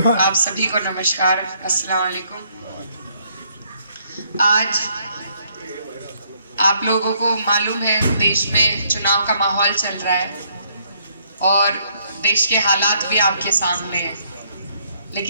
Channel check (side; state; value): both; inverted; correlation -0.69